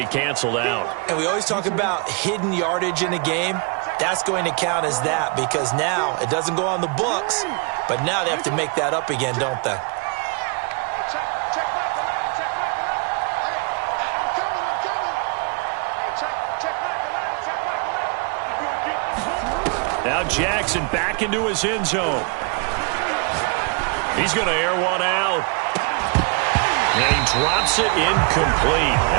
canceled out. And we always talk about hidden yardage in a game. That's going to count as that because now it doesn't go on the books, but now they have to make that up again, don't they? Now Jackson back into his end zone. He's going to air one out. And he drops it incomplete.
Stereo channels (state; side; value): quieter; left; 32.7 dB